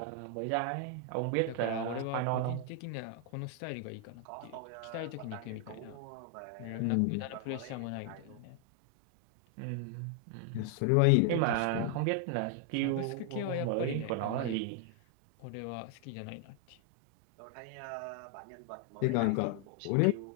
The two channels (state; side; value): different; both; correlation 0.00